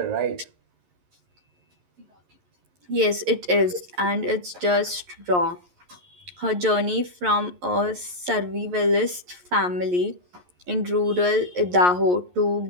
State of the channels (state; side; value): late; left; 11 ms